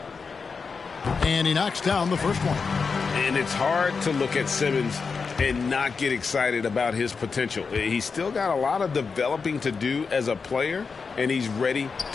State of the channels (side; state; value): right; quieter; 5.1 dB